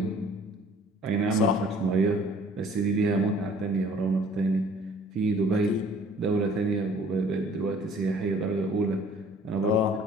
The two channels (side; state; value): both; normal; correlation 0.54